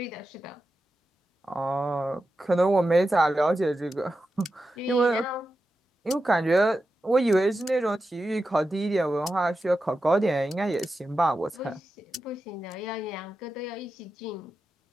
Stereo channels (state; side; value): normal; both; correlation 0.91